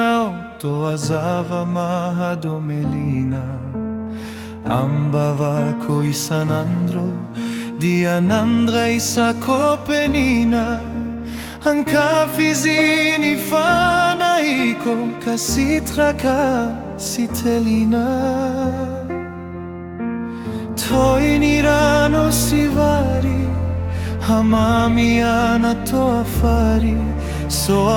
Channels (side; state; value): both; identical; correlation 1.00